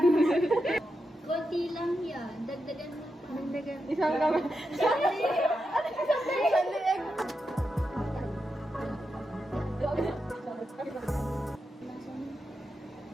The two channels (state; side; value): normal; both; correlation 0.87